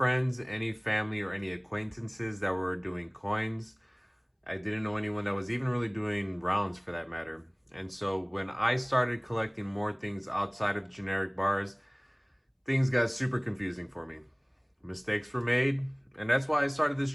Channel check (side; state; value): both; identical; correlation 1.00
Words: any family, or any acquaintances that were doing coins. I didn't know anyone that was even really doing rounds for that matter. And so when I started collecting more things outside of generic bars, things got super confusing for me. Mistakes were made, and that's why I started this